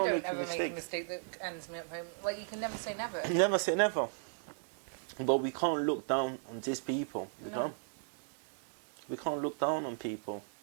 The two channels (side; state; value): left; silent; digital silence